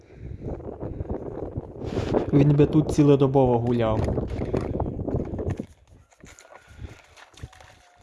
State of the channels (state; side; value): identical; both; correlation 1.00